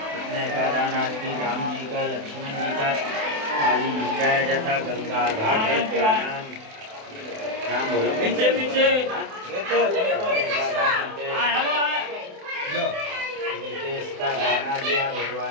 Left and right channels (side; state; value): left; late; 28 ms